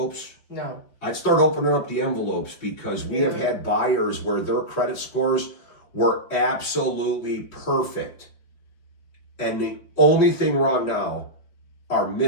No. I'd start opening up the envelopes because we have had buyers where their credit scores were absolutely perfect. And the only thing wrong now are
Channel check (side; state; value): right; late; 5.1 ms